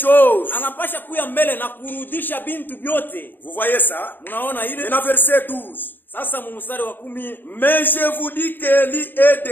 Anapasha kuya mbele na kurudisha bintu vyote. Vous voyez ça? Unaona ile? Et dans verset 12. Sasa mstari wa 10, Mais je vous dis qu'Élie est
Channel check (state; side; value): late; right; 0.092 ms